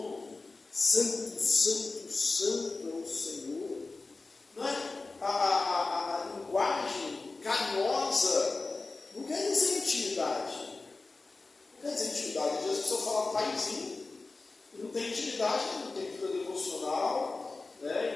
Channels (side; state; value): right; quieter; 3.6 dB